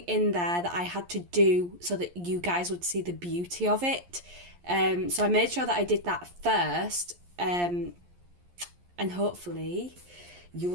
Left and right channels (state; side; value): late; left; 11 ms